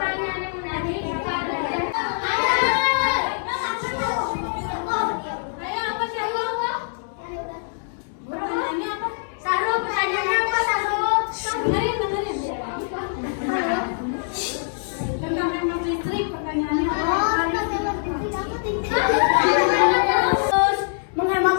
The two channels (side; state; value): right; silent; digital silence